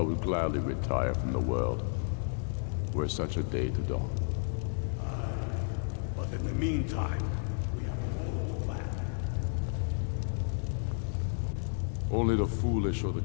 would gladly retire from the world, were such a day to dawn. Aye, but in the meantime, we have a war to plan. Only the foolish or the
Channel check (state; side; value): silent; right; digital silence